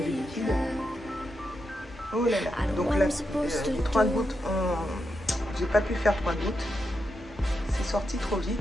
liquide. Oh là là, donc là, les 3 gouttes, j'ai pas pu faire 3 gouttes, c'est sorti trop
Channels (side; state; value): both; normal; correlation 0.85